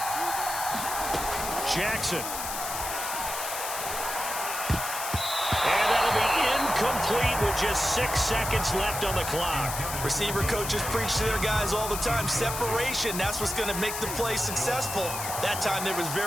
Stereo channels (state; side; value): noise; left; hiss, 5 dB below the sound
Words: Jackson. And that'll be incomplete with just 6 seconds left on the clock. Receiver coaches preach to their guys all the time. Separation, that's what's going to make the play successful. That time there was